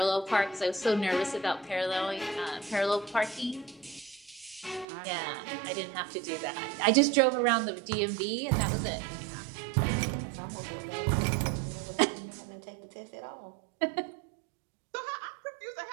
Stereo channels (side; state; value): left; drops out; at 4.9 s